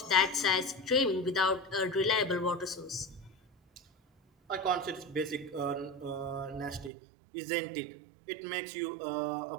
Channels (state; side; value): drops out; left; at 6.9 s